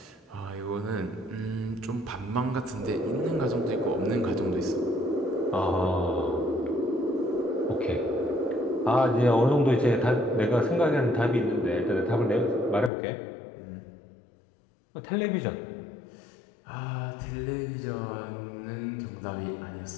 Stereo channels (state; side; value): drops out; right; at 12.9 s